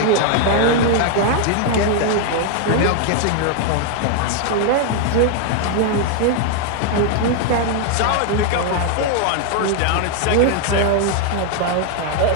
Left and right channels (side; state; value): both; different; correlation 0.00